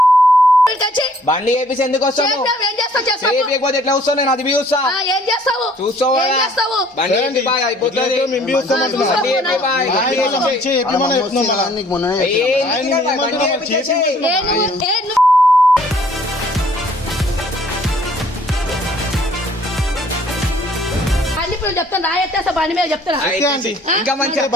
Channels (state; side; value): normal; both; correlation 0.59